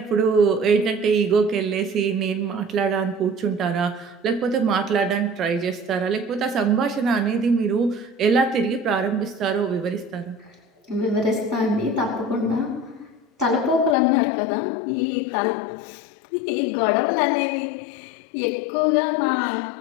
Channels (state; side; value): drops out; right; at 14.0 s